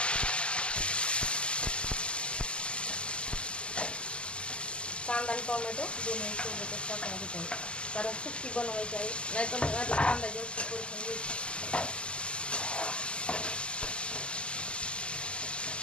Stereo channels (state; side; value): late; right; 0.051 ms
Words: कांदा आणि टोमॅटो दोन्ही सोबतच टाकून घेत आहे, कारण सुक्की बनवायची आहे, नाहीतर मग आधी कांदा जास्त परतून घ्यायचा।